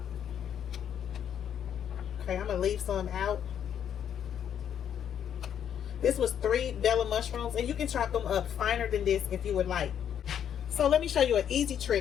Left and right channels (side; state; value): right; quieter; 9.1 dB